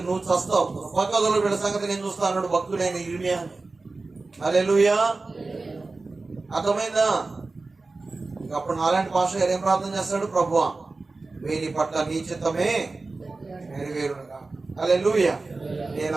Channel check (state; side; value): quieter; left; 3.6 dB